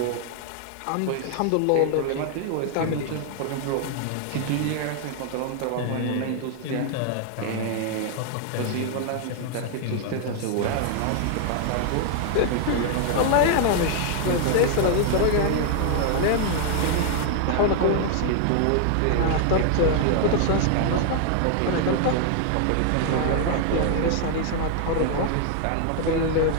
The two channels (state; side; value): different; both; correlation 0.00